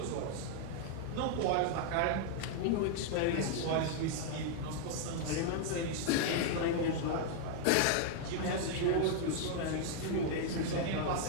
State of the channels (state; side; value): different; both; correlation 0.00